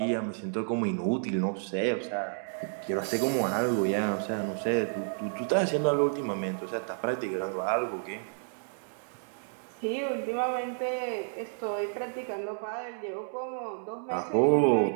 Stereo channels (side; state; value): left; silent; 57 dB below the other